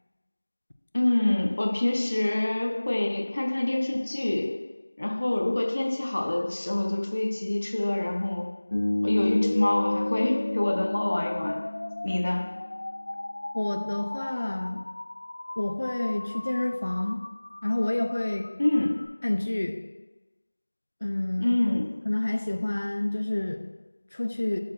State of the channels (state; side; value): inverted; both; correlation -1.00